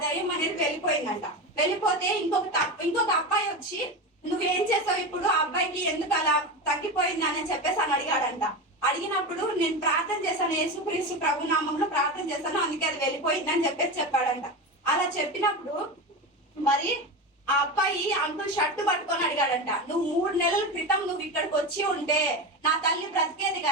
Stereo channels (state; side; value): normal; both; correlation 0.21